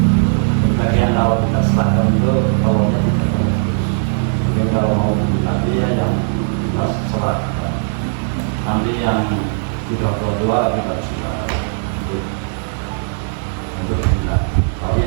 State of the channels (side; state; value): left; silent; digital silence